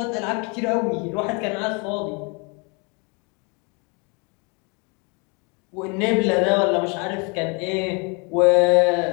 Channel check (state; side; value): quieter; right; 32.0 dB